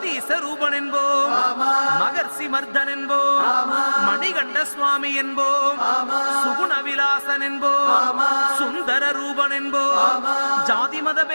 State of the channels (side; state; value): both; inverted; correlation -1.00